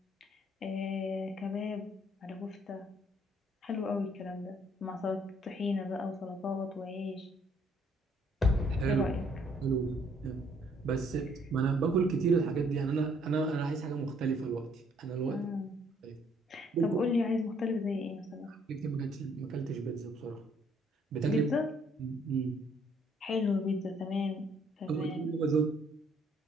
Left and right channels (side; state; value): both; normal; correlation 0.65